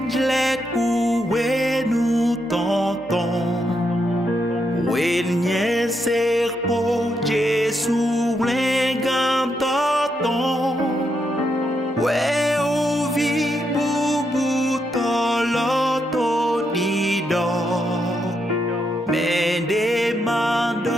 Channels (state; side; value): normal; both; correlation 0.81